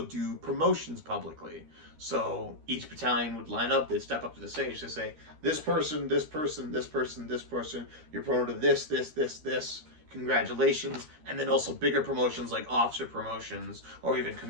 do promotions publicly. So each battalion would line up, they'd step up to the stage to say, this person, this person, this person, this person, you're promoted to this, congratulations. And then also bigger promotions like officer promotions or even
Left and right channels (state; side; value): late; left; 13 ms